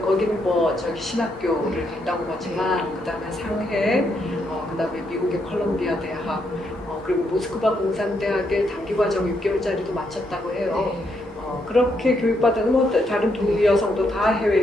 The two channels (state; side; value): normal; both; correlation 0.77